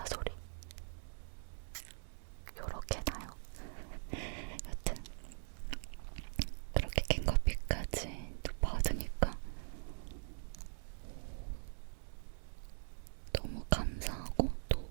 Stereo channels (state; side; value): silent; left; digital silence